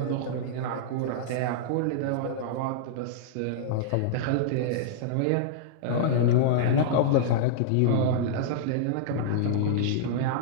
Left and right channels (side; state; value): both; different; correlation -0.02